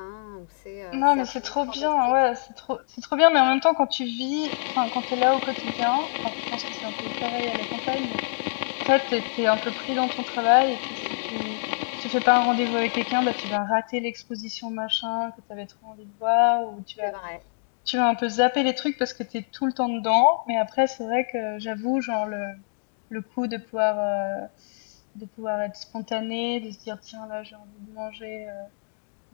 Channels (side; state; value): right; silent; digital silence